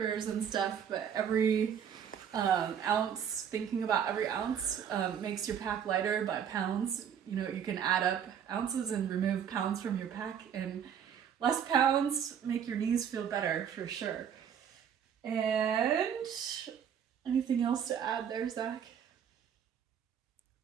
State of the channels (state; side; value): quieter; left; 8.4 dB